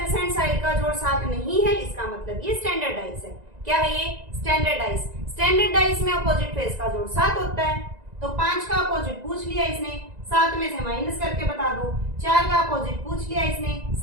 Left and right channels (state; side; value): late; left; 1.9 ms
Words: साइड का जोड़ 7 नहीं है, इसका मतलब ये स्टैंडर्ड डाइस है। क्या है ये? Standard dice. स्टैंडर्ड डाइस में अपोजिट फेस का जोड़ 7 होता है। तो 5 का अपोजिट पूछ लिया इसने, 7 में से माइनस करके बता दो। 4 का अपोजिट पूछ लिया इसने,